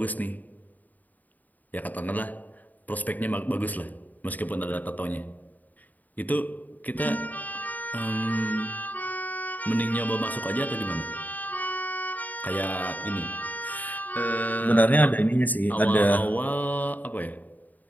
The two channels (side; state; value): right; late; 0.081 ms